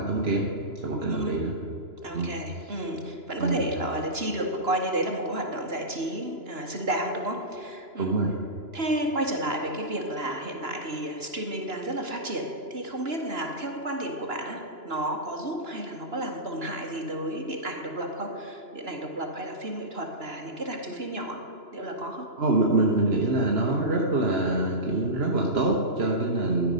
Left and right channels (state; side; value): late; left; 2.9 ms